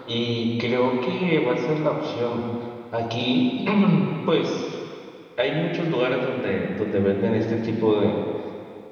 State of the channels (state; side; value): identical; both; correlation 1.00